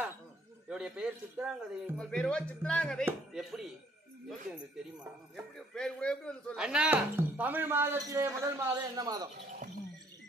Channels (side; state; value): both; normal; correlation 0.63